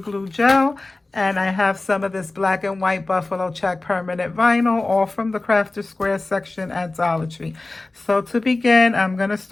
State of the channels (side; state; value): right; quieter; 3.1 dB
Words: gel, and I have some of this black and white buffalo check permanent vinyl, all from the Crafter Square section at Dollar Tree. So to begin, I'm going to